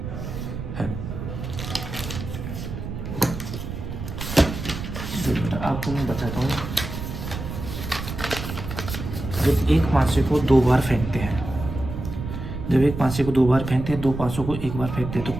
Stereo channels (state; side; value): noise; right; rumble, 7 dB below the sound